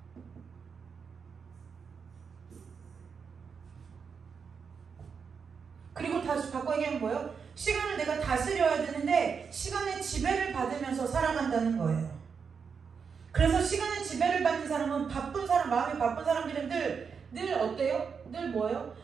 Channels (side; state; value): left; quieter; 6.0 dB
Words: 그리고 다시 바꿔 얘기하면 뭐예요? 시간을 내가 다스려야 되는데 시간의 지배를 받으면서 살아간다는 거예요. 그래서 시간의 지배를 받는 사람은 마음이 바쁜 사람들은 늘 어때요? 늘 뭐예요?